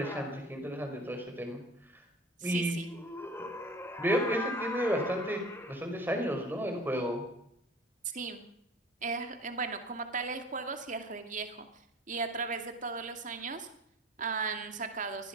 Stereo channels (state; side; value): normal; both; correlation 0.43